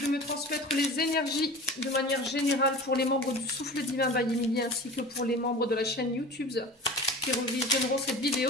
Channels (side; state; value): both; normal; correlation 0.36